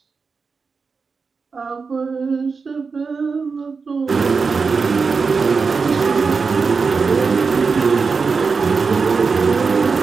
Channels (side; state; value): left; quieter; 4.9 dB